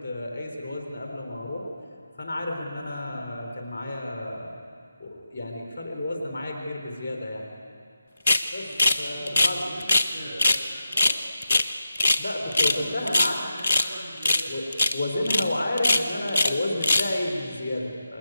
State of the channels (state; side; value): inverted; both; correlation -0.90